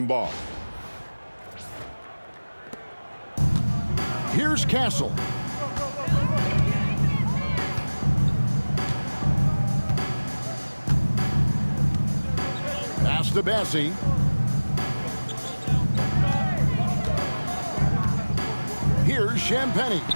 Ball. Here's Castle. Pass to Bassi. Here's Champagnie.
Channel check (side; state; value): both; inverted; correlation -1.00